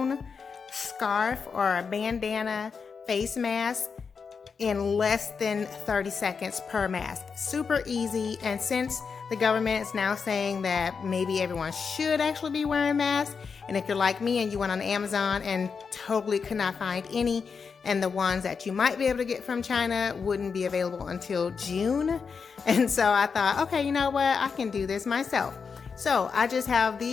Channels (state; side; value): quieter; right; 5.6 dB